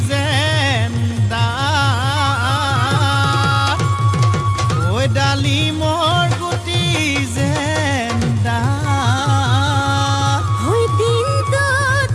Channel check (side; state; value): both; identical; correlation 1.00